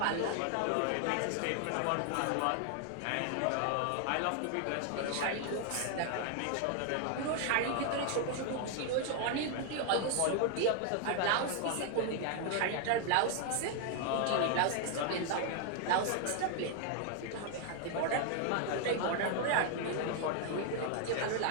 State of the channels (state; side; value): different; both; correlation 0.00